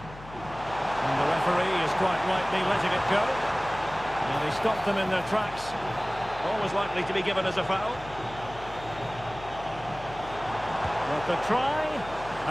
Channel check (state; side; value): noise; left; hum, 16 dB below the sound